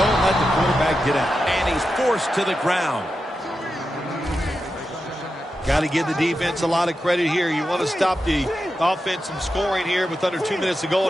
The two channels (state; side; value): normal; both; correlation 0.89